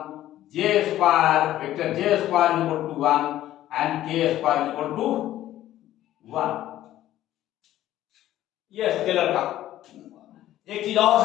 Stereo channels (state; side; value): quieter; right; 13.5 dB